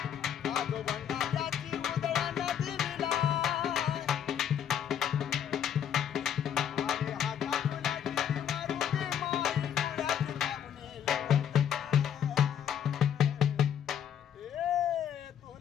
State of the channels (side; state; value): right; quieter; 9.1 dB